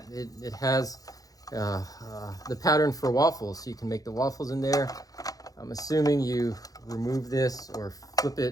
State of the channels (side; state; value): right; late; 0.17 ms